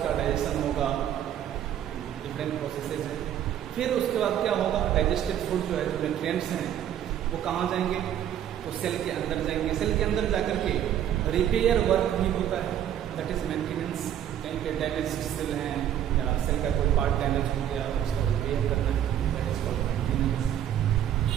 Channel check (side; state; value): left; quieter; 10.5 dB